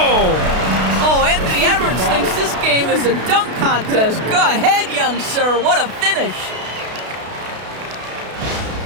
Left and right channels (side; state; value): left; late; 32 ms